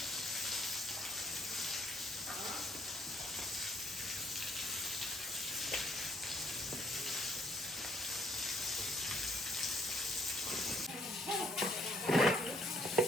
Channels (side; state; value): both; normal; correlation 0.65